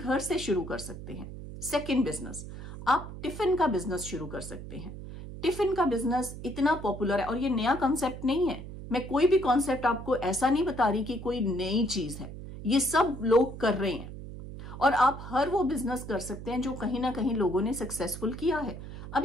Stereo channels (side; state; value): right; noise; hum, 11 dB below the sound